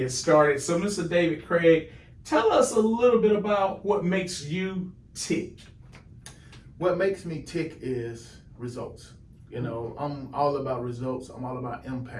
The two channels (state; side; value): identical; both; correlation 1.00